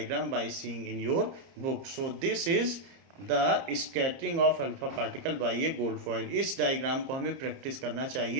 by seeing in your book. So this is the scattering of alpha particle by a gold foil. इस diagram को हमें practice करना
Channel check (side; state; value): left; late; 30 ms